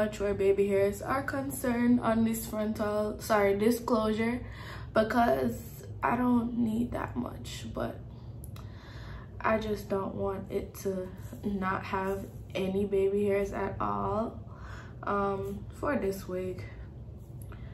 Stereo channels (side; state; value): both; identical; correlation 1.00